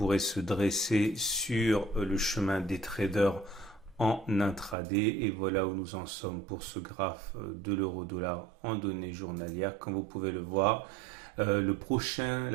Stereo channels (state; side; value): drops out; left; at 4.8 s